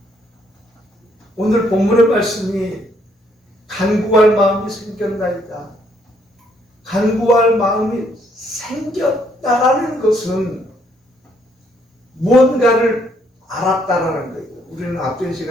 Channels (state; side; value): normal; both; correlation 0.70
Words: 오늘 본문의 말씀이 간구할 마음이 생겼나이다. 간구할 마음이 생겼다라는 것은 무언가를 알았다라는 거예요. 우리는 앞전